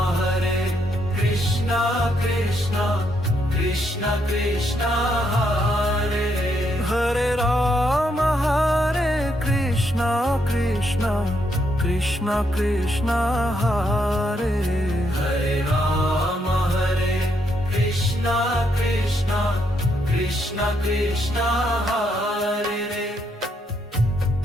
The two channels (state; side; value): normal; both; correlation 0.76